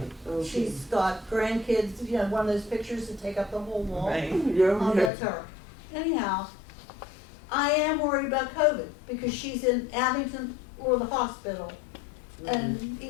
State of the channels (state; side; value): drops out; right; at 5.1 s